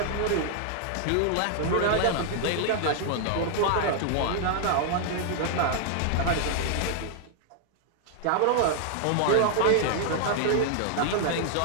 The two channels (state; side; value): different; both; correlation 0.00